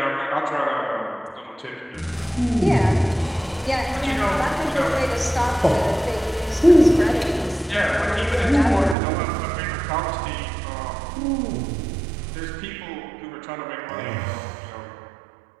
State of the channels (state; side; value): drops out; left; at 9.0 s